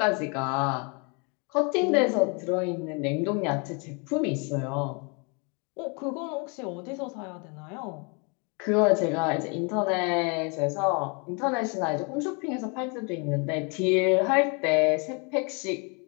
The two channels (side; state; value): right; quieter; 33.5 dB